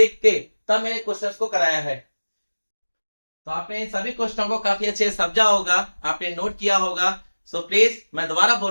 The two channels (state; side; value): inverted; both; correlation -1.00